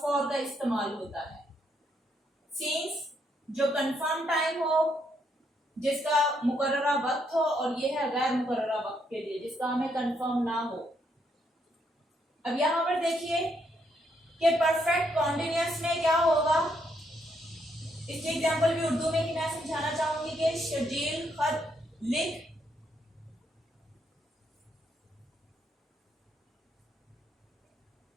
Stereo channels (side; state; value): both; normal; correlation 0.75